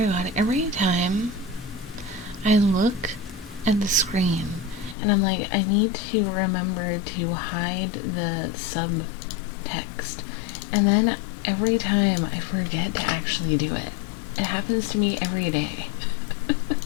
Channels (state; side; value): drops out; right; at 5.0 s